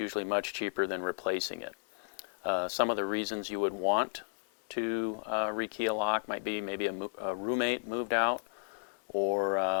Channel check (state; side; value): silent; right; 56 dB below the other